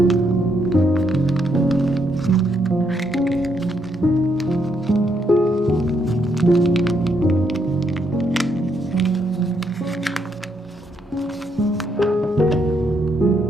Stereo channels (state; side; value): normal; both; correlation 0.76